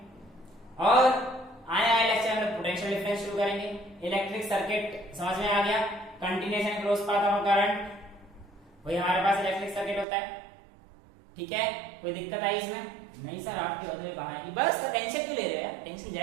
और आने वाले लेक्चर में पोटेंशियल डिफरेंस शुरू करेंगे। इलेक्ट्रिक सर्किट समझ में आ गया, continuous and cross path of current, वही हमारे पास इलेक्ट्रिक सर्किट होता है। ठीक है, कोई दिक्कत आई इसमें? नहीं सर आपके होते हुए कहां आएगी, बस टेंशन क्यों ले रहे हो यार, टेंशन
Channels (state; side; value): drops out; left; at 10.1 s